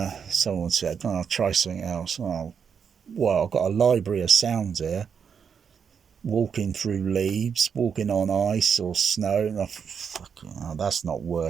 Someone said, I'll try something else. Oh, well, I've got a library of sounds here. Walking through leaves, walking on ice or snow, and that's not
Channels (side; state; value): left; quieter; 6.9 dB